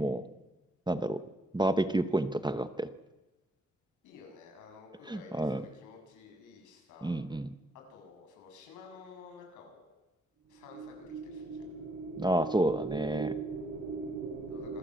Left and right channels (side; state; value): both; normal; correlation 0.73